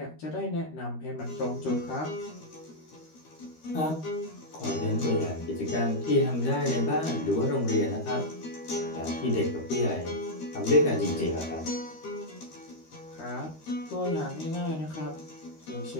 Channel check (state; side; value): late; right; 13 ms